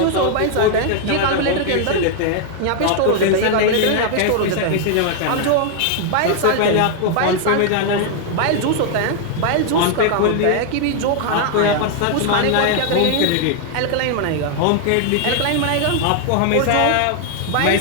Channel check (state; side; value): different; both; correlation 0.00